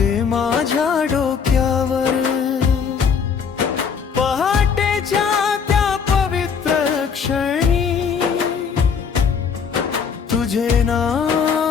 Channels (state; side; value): quieter; right; 6.4 dB